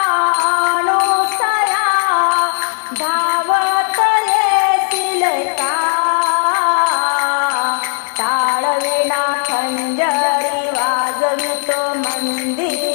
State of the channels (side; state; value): right; silent; 60 dB below the other